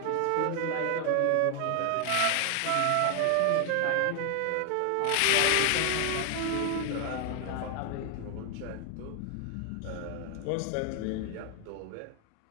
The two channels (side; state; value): both; different; correlation 0.00